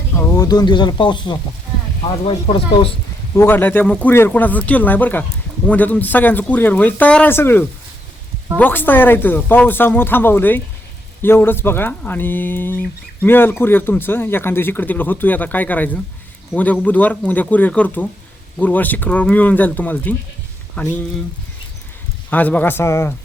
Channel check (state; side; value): normal; both; correlation 0.79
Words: हो 2 दिवस झाला पाऊसच होता. आज वाईट परत पाऊस उघडला त्यामुळे कुरिअर कोणाचं केलं नाही बरं का. उद्या तुमचं सगळ्यांचं कुरिअर होईल तयार आहे सगळं बॉक्स तयार आहे इथं पावसामुळे थांबवलंय एवढंच बघा. आणि मिळेल कुरिअर तुमचं एखाद्या दिवशी इकडे तिकडे होतोय आता काय करायचं. उद्या बुधवार उद्या कुरिअर करतो गुरुवार शुक्रवार मिळून जाईल तुम्हाला ती. आणि आज बघा असा